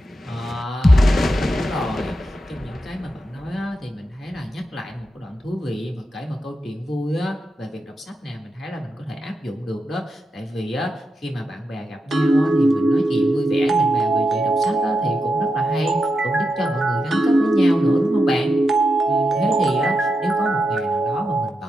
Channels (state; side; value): normal; both; correlation 0.87